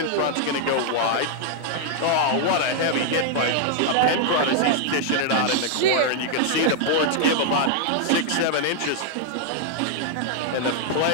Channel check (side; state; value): both; different; correlation -0.01